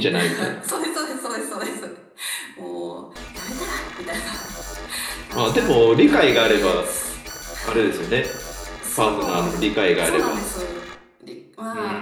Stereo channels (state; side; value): identical; both; correlation 1.00